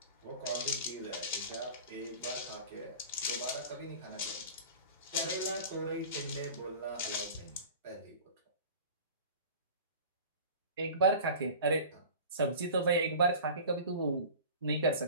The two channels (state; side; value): inverted; both; correlation -0.39